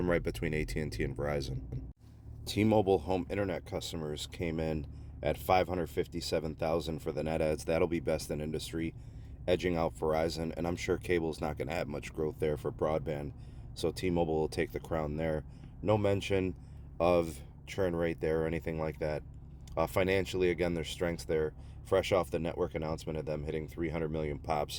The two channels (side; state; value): both; identical; correlation 1.00